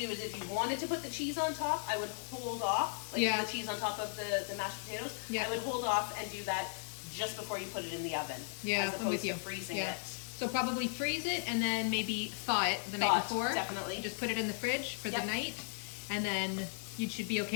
is if you wanted to put the cheese on top, I would hold off, like Yeah. the cheese on top of the mashed potatoes. Yeah. I would hold off and do that just before you put it in the oven. Yeah, as I'm opposed with you. to freezing Yeah. it. So probably freeze it and then maybe thaw it the Thaw night it, before. definitely. Just put it in the fridge for Yep. the night, and then you should be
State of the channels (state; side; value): silent; right; 54 dB below the other